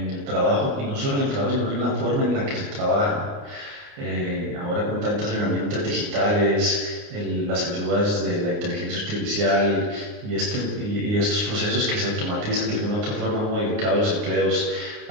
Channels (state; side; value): late; left; 29 ms